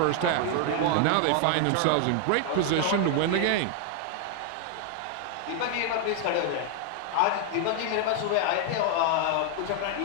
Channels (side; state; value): both; different; correlation 0.00